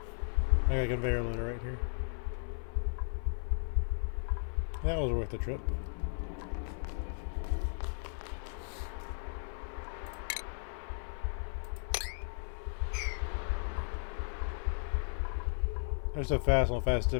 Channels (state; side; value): silent; right; 54 dB below the other